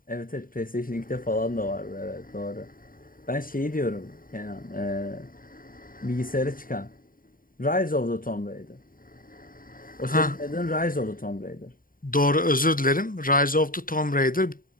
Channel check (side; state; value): right; late; 0.41 ms